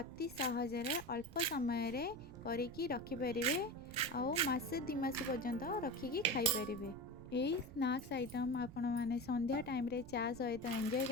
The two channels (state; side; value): noise; right; rumble, 15 dB below the sound